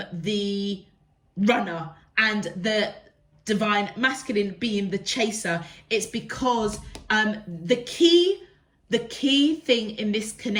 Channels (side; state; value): both; identical; correlation 1.00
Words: the runner and the divine masculine being the chaser. It's because the key thing in this